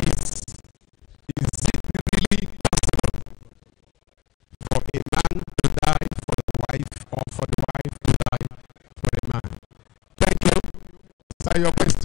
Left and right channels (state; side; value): quieter; right; 16.3 dB